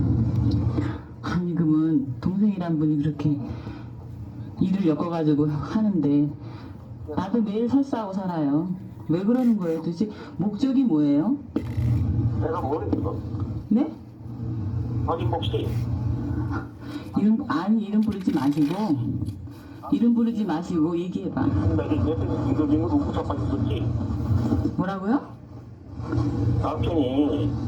아니 그러면 동생이란 분이 그렇게 일을 엮어가지고 하는데 나도 매일 설사하고 살아요. 왜 그러는 거예요? 도대체 목적이 뭐예요? 내가 모르겠어. 네? 아니 혹시 이름 부르지 마시고 얘기해봐. 내가 옆에 김도진을 웃고 자빠졌었지? 뭐라고요? 남편이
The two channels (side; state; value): both; identical; correlation 1.00